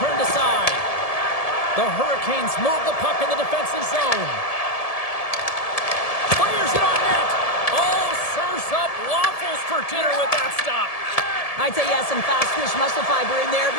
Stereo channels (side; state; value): right; late; 1.7 ms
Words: turned aside. The Hurricanes move the puck in the defensive zone. Fires it on net. Oh, serves up waffles for dinner with that stop. I'd say he has some fast twitch muscle fiber in there